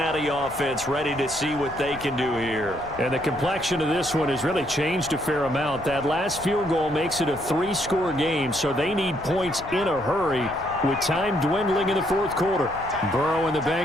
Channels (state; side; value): noise; left; rumble, 17 dB below the sound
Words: offense ready to see what they can do here. And the complexion of this one has really changed a fair amount. That last field goal makes it a 3-score game, so they need points in a hurry with time dwindling in the 4th quarter. Burrow and the